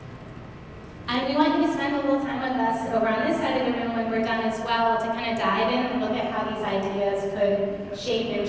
And we want you to spend a little time with us over on this side of the room when we're done as well, to kind of dive in and look at how these ideas could shape and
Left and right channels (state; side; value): identical; both; correlation 1.00